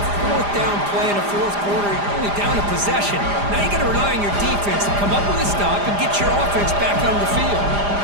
fourth down play in the fourth quarter. You're only down a possession. Now you got to rely on your defense to come up with a stop and get your offense back on the field.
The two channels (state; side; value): late; left; 4.9 ms